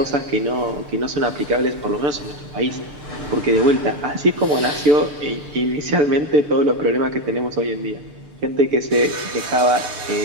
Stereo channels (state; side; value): late; left; 6.8 ms